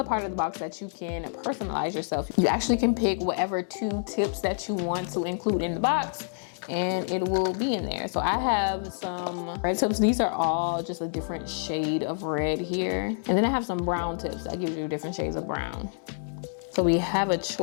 part of the box that you can personalize yourself. You actually can pick whatever 2 tips that you want to include in the box, and it will be in there. So I have some red tips. These are all just a different shade of red here. And then I have some brown tips that gives you different shades of brown. So we have a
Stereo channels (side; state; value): right; silent; digital silence